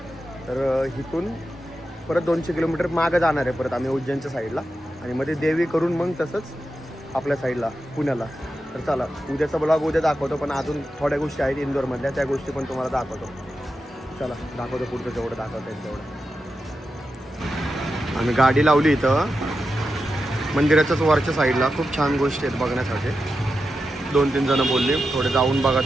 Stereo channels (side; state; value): both; normal; correlation 0.89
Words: तर इथून परत 200 किलोमीटर मागं जाणार आहे परत आम्ही उज्जैनच्या साईडला. आणि मध्ये देवी करून मग तसंच आपल्या साईडला पुण्याला. तर चला उद्याचा ब्लॉग उद्या दाखवतो. पण अजून थोड्या गोष्टी आहेत इंदोरमधल्या त्या गोष्टी पण तुम्हाला दाखवतो. चला दाखवतो पुढचं जेवढं दाखवता येईल तेवढं. आम्ही गाडी लावली इथं मंदिराच्याच वरच्या साईडला. खूप छान गोष्टी आहेत बघण्यासाठी. 2-3 जणं बोलली थोडे जाऊन बघा